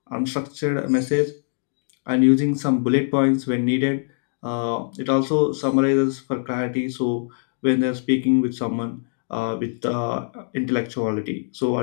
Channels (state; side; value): silent; right; digital silence